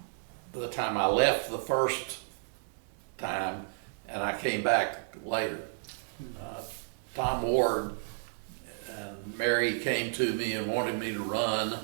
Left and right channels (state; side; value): silent; left; digital silence